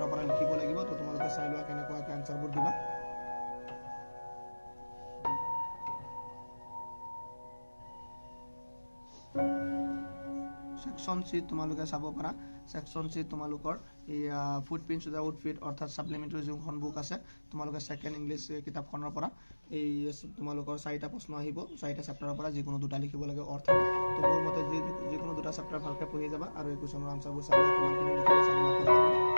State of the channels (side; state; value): both; inverted; correlation -1.00